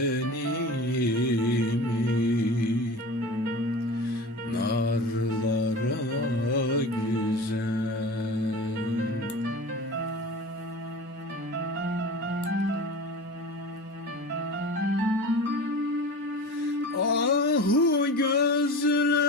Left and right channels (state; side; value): normal; both; correlation 0.33